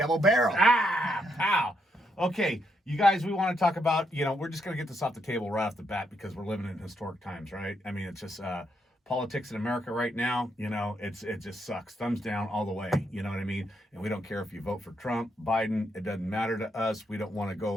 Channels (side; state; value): both; normal; correlation 0.77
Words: barrel. Pow. Okay, you guys, we want to talk about, we're just going to get this off the table right off the bat because we're living in historic times, right? I mean, it's just politics in America right now, it just sucks. Thumbs down all the way, you know what I mean? And we don't care if you vote for Trump, Biden, it doesn't matter to us. We don't want to